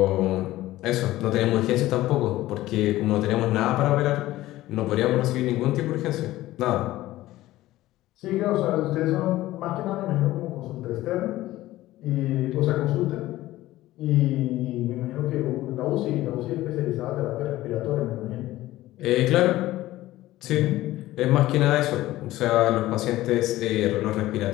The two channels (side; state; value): right; quieter; 16.2 dB